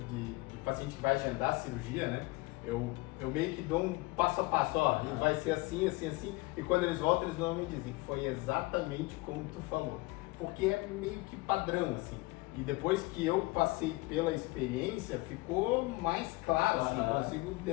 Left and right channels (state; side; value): quieter; right; 23.1 dB